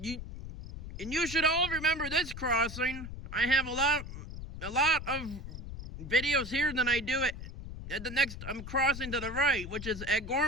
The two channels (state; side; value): noise; left; rumble, 9 dB below the sound